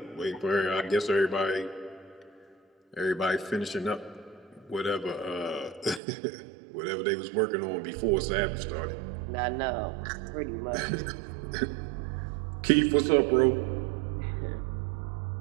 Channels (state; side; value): drops out; left; at 6.0 s